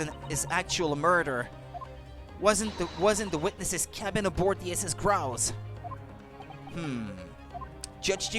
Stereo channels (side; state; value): both; identical; correlation 1.00